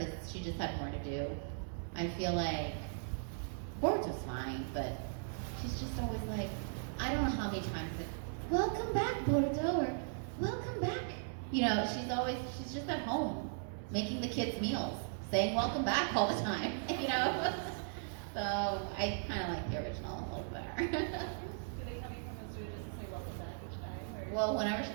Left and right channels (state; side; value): silent; left; digital silence